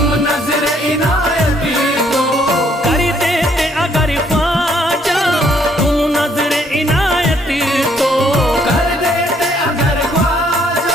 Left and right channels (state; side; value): normal; both; correlation 0.67